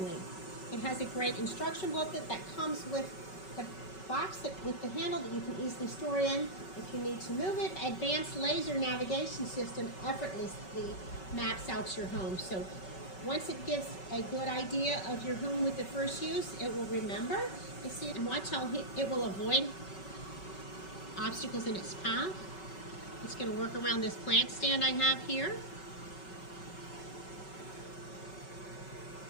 It has a great instruction booklet that comes with the box with the handle that you can easily store in if you need to move it. Advanced laser navigation system effortlessly maps out your home. So once it gives a good idea of your home with the first use, it will remember. You see, and watch how it will avoid obstacles in its path. It's going to work around this plant stand I have here.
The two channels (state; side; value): late; right; 5.3 ms